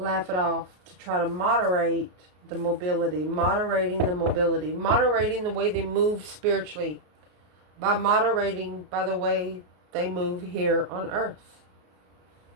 it off to try to moderate the mobility, moderating the way they move spiritually, by moderating by the way they move here on earth.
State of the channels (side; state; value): left; late; 33 ms